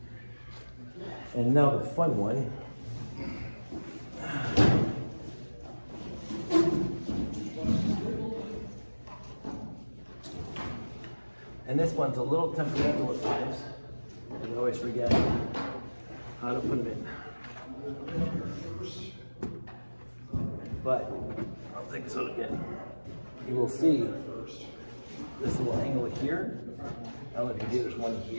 And now the fun one. And this one's a little temperamental at times. I always forget how to put it in. But I'll take this out again. You will see this little angle here. I don't know if you see, there's one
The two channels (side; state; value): both; inverted; correlation -1.00